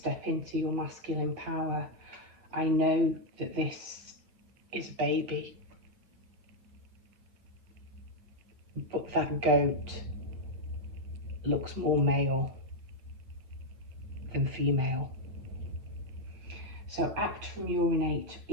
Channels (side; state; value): left; late; 8.6 ms